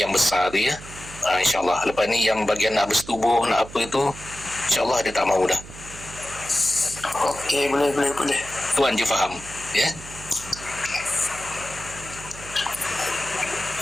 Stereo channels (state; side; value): noise; right; hum, 15 dB below the sound